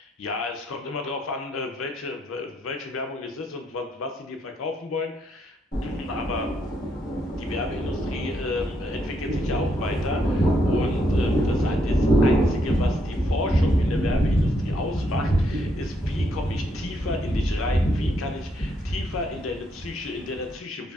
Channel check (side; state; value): both; normal; correlation 0.75